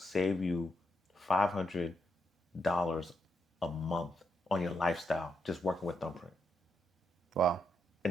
you $500 a month on your lifestyle just working with Thumbprint. Wow.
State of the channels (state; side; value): normal; both; correlation 0.81